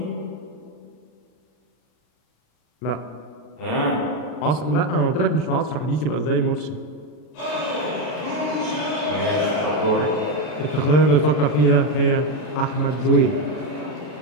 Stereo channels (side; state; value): right; late; 40 ms